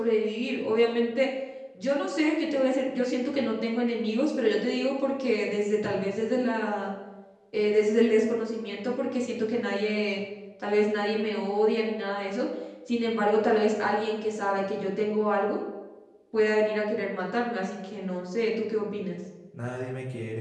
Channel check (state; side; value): identical; both; correlation 1.00